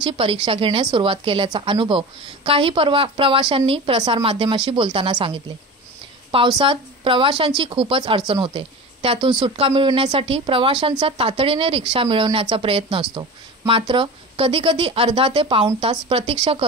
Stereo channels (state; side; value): normal; both; correlation 0.31